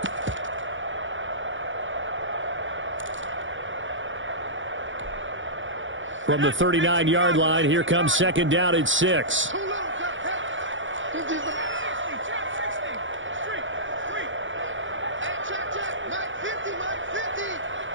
From the 39-yard line, here comes 2nd down at 6.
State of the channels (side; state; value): left; late; 0.56 ms